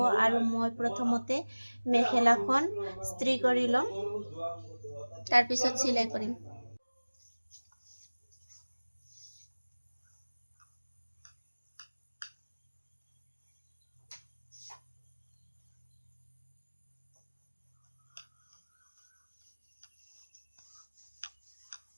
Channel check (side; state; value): both; inverted; correlation -1.00